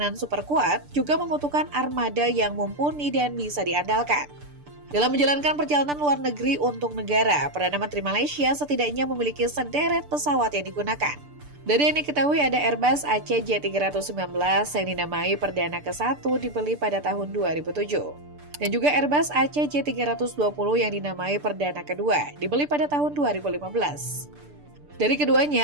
super kuat, juga membutuhkan armada yang mumpuni dan bisa diandalkan. Dalam menjalankan perjalanan luar negeri untuk negara, Perdana Menteri Malaysia setidaknya memiliki sederet pesawat yang digunakan. Dari yang diketahui ada Airbus ACJ319 yang dinamai Perdana ke-1 dibeli pada tahun 2007. Dan juga Airbus ACJ320 yang dinamai Perdana kedua dibeli pada tahun 2015. Dari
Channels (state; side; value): late; left; 6.8 ms